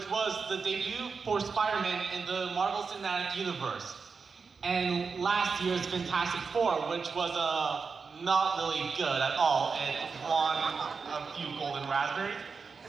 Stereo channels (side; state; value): left; quieter; 5.1 dB